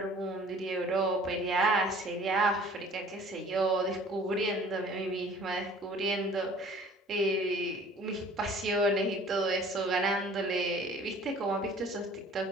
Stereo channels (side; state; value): both; normal; correlation 0.50